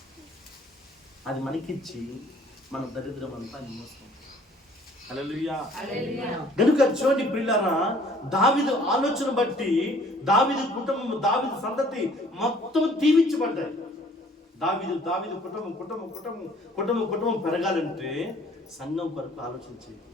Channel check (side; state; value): both; normal; correlation 0.56